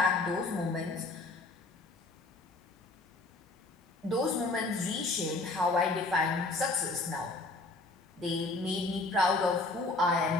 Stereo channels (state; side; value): quieter; right; 3.2 dB